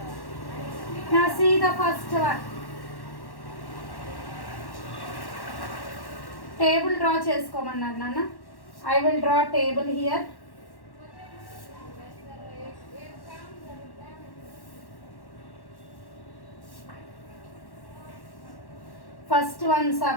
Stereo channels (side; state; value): right; late; 1.1 ms